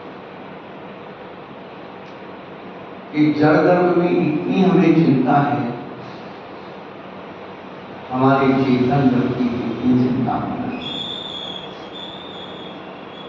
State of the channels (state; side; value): identical; both; correlation 1.00